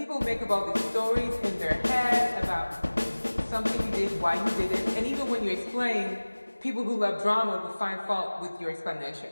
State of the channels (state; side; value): inverted; both; correlation -1.00